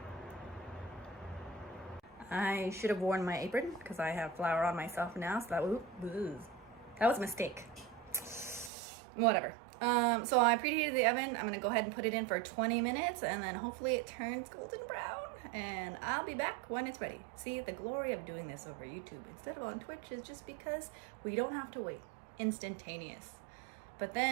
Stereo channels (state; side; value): drops out; left; at 8.7 s